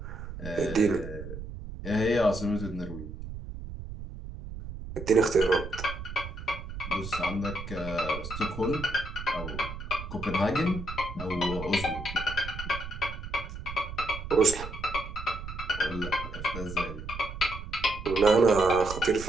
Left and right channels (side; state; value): right; noise; rumble, 9 dB below the sound